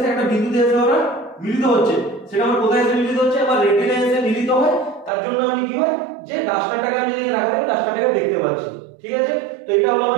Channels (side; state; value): left; drops out; at 5.1 s